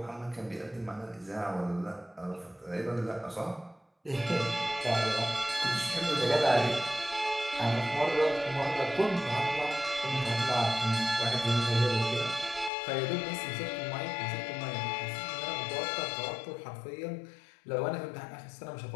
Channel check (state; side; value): drops out; right; at 12.7 s